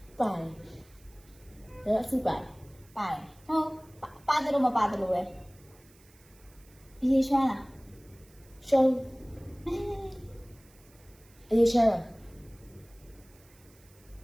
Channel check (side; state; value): right; noise; hiss, 28 dB below the sound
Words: ပါတယ်အစီပါတယ် ပါတယ်ဟုတ်ပါတယ်လို့မပါတယ်လို့ပဲရေရွှမ်းလား ရှုံးအေးရှာ